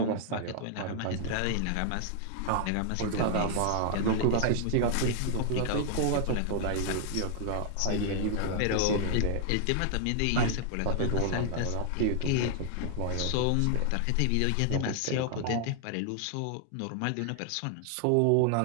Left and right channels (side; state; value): both; different; correlation 0.00